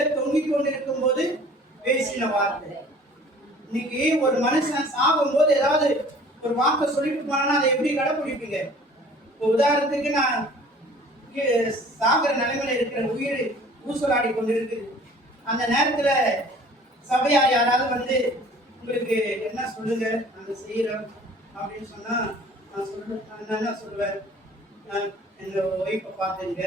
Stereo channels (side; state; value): both; normal; correlation 0.50